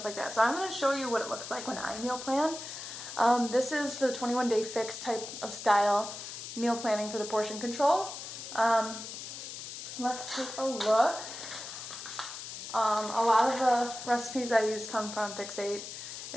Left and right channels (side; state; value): left; noise; hiss, 9 dB below the sound